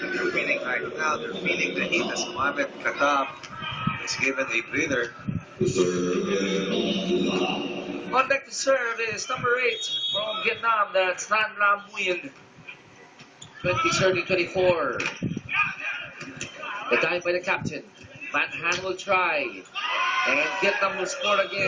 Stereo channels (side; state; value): both; identical; correlation 1.00